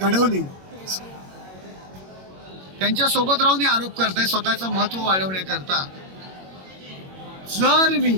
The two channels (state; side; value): late; left; 21 ms